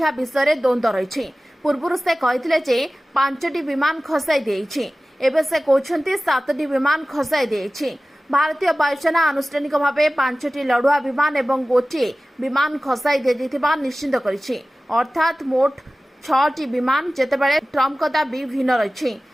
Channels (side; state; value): both; normal; correlation 0.97